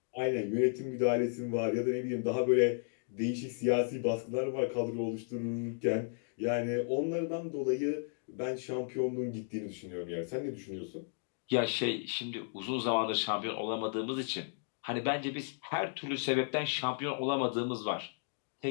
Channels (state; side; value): silent; right; digital silence